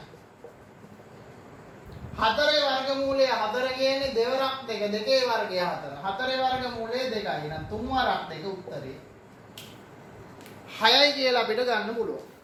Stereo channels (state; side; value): identical; both; correlation 1.00